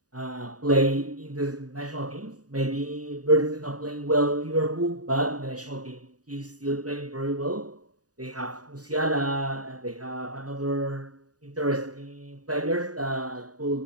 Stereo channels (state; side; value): late; left; 0.68 ms